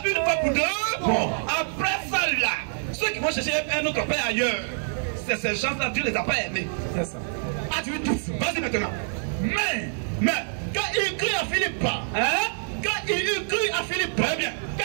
une fois pour deux. Bon. Après ça, là, ceux qui vont chercher un autre père ailleurs, c'est ces gens-là, Dieu les a pas aimés. C'est ça. Ah, tu veux tout ça? Vas-y maintenant. Mais, quand il crie à Philippe, hein? Quand il eut cru à Philippe, très bien.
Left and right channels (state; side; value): silent; left; digital silence